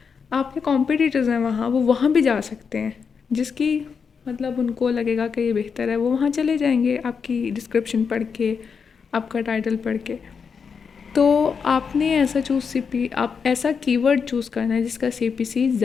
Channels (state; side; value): quieter; right; 6.0 dB